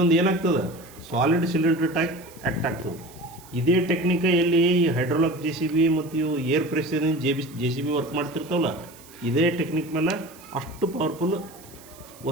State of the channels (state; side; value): noise; right; hiss, 22 dB below the sound